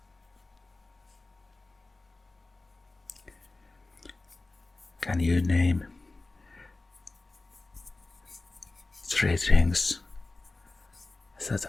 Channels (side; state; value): right; quieter; 3.2 dB